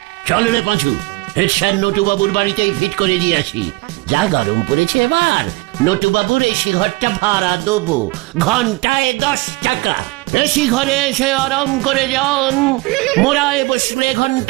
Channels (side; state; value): left; quieter; 23.6 dB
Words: চল রে পাঁচু, হেডস্যার নটুবাবুর বাড়িতেই ফিট করে দিয়ে আসি। যা গরম পড়েছে আবার। নটুবাবুর এসি ঘরটা ভাড়া দেবো, ঘন্টায় 10 টাকা। এসি ঘরে এসে আরাম করে যান। মোড়ায় বসলে